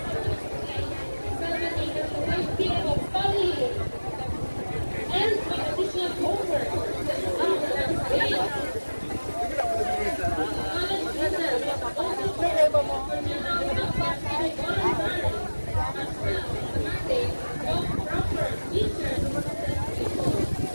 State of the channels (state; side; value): inverted; both; correlation -1.00